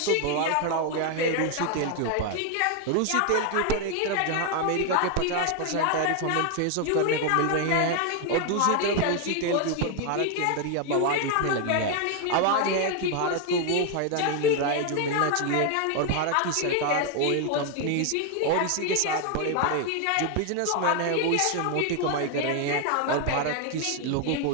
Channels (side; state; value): both; different; correlation 0.01